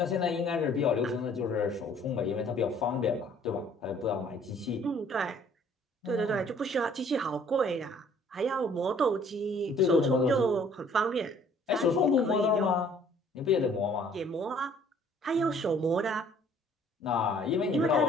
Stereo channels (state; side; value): normal; both; correlation 0.57